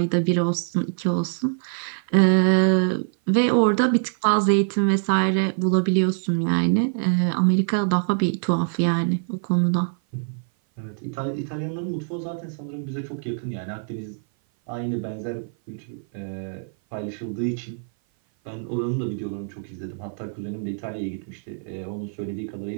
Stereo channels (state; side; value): silent; left; 57 dB below the other